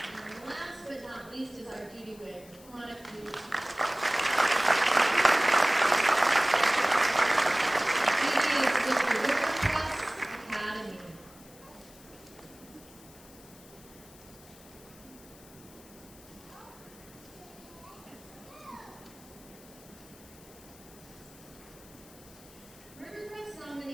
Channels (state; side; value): noise; left; hiss, 22 dB below the sound